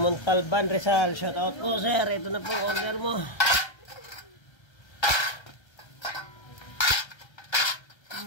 Montalban, Rizal. Shout out po, sir. Ito na po order mo.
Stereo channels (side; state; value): right; late; 1.3 ms